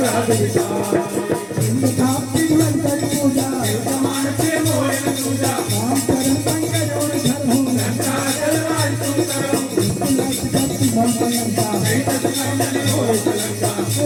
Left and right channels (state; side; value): identical; both; correlation 1.00